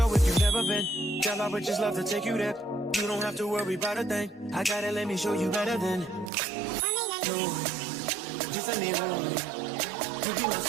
if you've never been, tell I would just love to take you there. You don't have to worry about a thing. I gotta let me show you better than no. Just let me hold you. You be my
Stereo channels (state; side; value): drops out; left; at 6.3 s